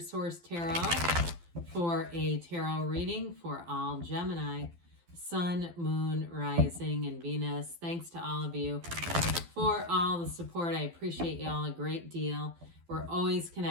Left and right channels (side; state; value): left; late; 12 ms